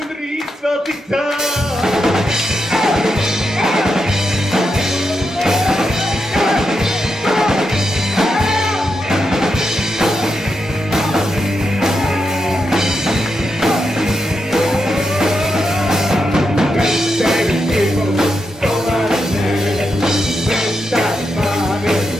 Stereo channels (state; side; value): normal; both; correlation 0.85